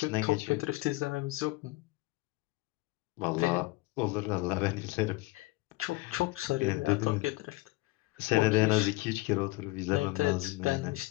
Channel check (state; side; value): quieter; right; 21.9 dB